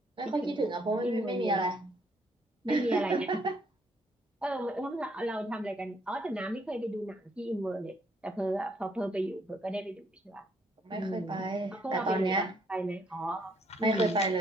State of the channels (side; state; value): both; normal; correlation 0.69